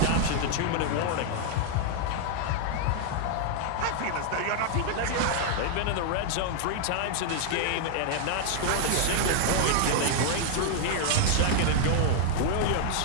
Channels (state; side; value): different; both; correlation 0.00